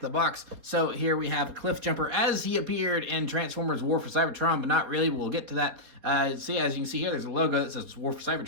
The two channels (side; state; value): left; late; 4.1 ms